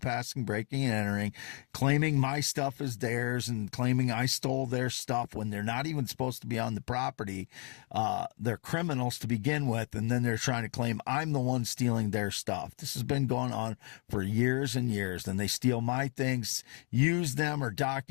breaking and entering, claiming my stuff is theirs and claiming I stole their stuff when they're not even supposed to be on the property. They're criminals to begin with, and then they're trying to claim I'm the one stealing their stuff. This has been going on for years and years. Then they steal my things, use them or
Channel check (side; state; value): right; quieter; 36.5 dB